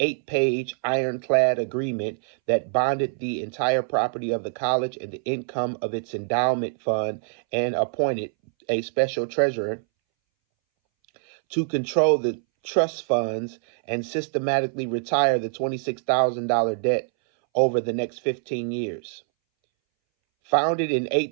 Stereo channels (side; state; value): left; silent; 62 dB below the other